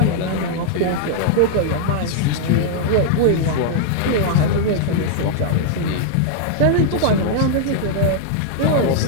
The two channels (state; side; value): different; both; correlation 0.00